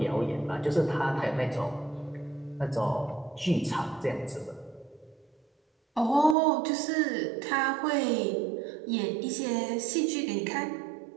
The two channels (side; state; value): left; drops out; at 6.4 s